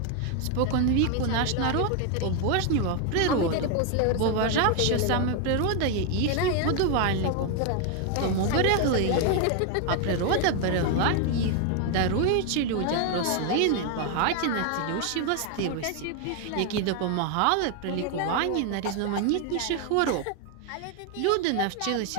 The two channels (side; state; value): both; different; correlation 0.01